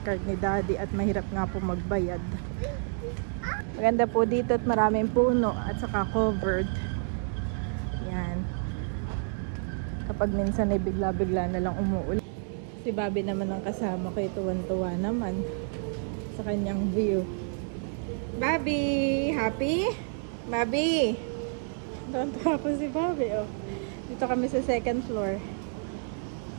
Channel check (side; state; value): left; silent; 58 dB below the other